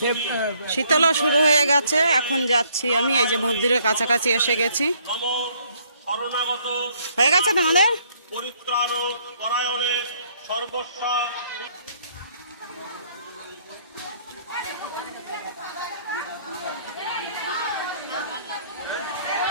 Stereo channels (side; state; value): both; inverted; correlation -0.65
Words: শীতলা শুরু হয়ে গেছে, এখন যাচ্ছি আমি। এই যে মন্দিরের কাছাকাছি এসে গেছি। হয়ে গেছে তোমাদের পরিত্রাণ পরায়ণে সর্বস্বা।